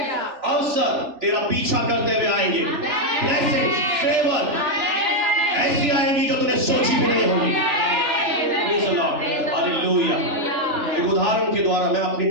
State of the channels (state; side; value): late; left; 3.4 ms